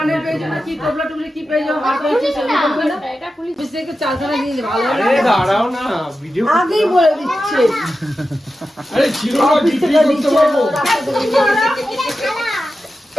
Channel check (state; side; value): normal; both; correlation 0.92